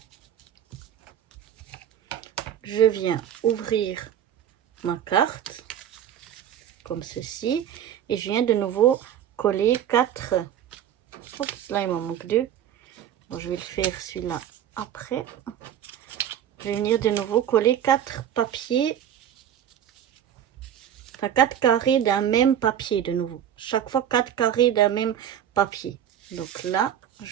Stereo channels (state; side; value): quieter; left; 10.0 dB